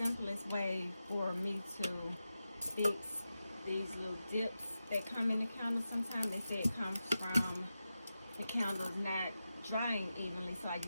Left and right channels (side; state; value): both; inverted; correlation -0.91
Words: way for me to fix these little dips that come in the candle. Sometimes they say it comes from the candles not drying evenly, so I